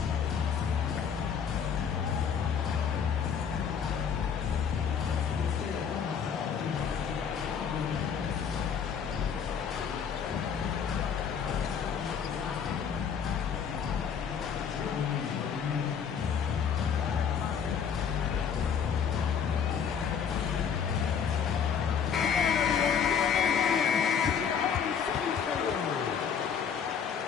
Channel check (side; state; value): right; quieter; 7.2 dB